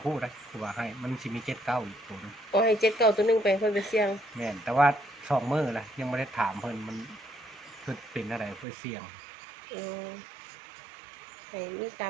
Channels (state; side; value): drops out; left; at 8.7 s